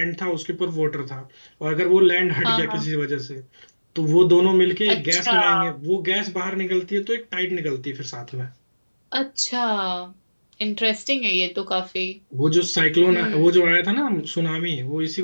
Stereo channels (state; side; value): inverted; both; correlation -1.00